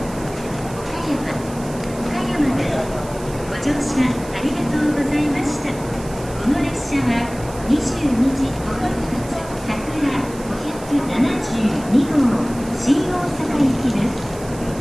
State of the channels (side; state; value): right; noise; hiss, 18 dB below the sound